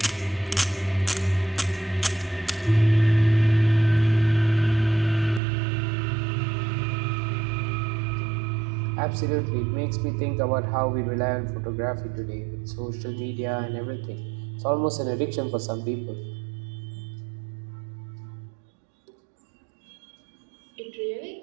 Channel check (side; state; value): left; drops out; at 5.4 s